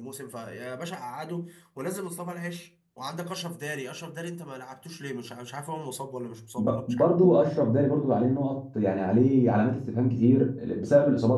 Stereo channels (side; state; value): both; identical; correlation 1.00